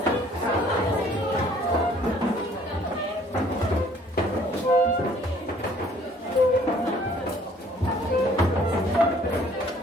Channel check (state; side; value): normal; both; correlation 0.57